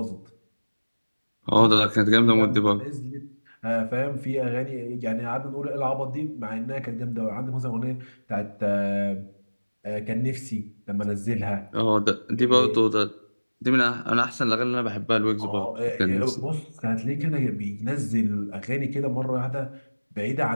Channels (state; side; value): inverted; both; correlation -1.00